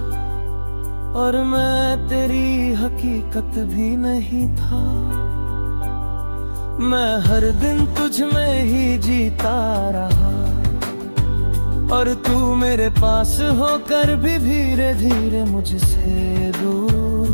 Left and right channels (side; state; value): both; inverted; correlation -1.00